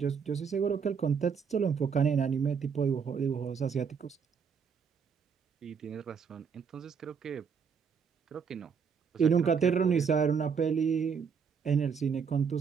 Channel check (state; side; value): quieter; left; 6.3 dB